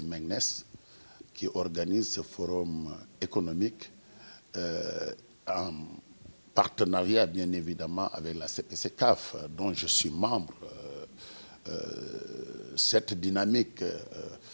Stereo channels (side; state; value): both; inverted; correlation -1.00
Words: qui organise ce forum économique en partenariat bien évidemment avec la CPC-CAF, dont je suis membre. Cette dynamique